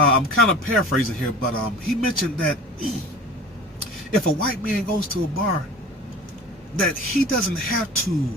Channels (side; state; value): both; normal; correlation 0.40